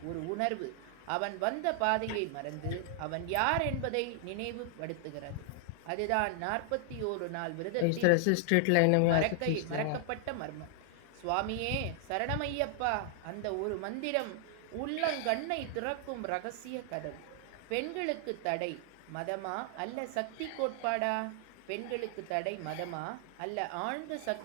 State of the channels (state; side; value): different; both; correlation 0.00